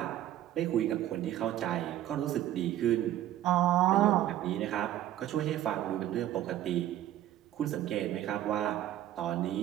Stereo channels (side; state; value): left; quieter; 12.7 dB